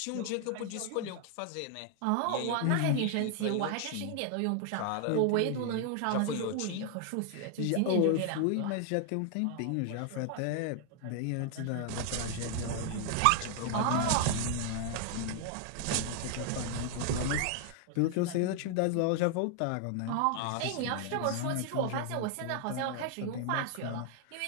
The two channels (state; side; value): different; both; correlation 0.00